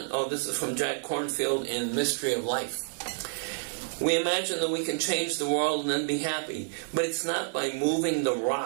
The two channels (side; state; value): left; silent; digital silence